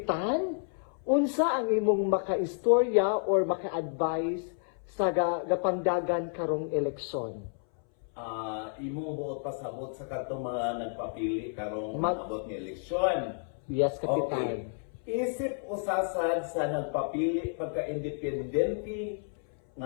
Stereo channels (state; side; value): silent; right; 57 dB below the other